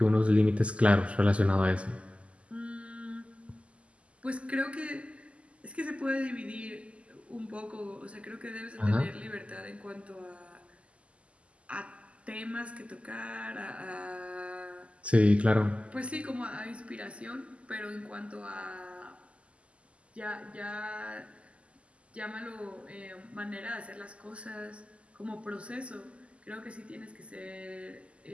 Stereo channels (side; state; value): left; late; 0.058 ms